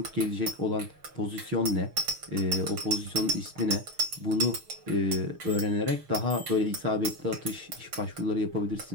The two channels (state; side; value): late; left; 6.5 ms